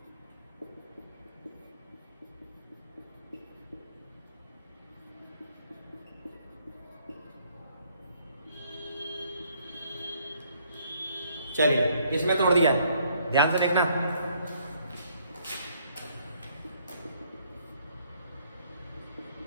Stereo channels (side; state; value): both; inverted; correlation -0.66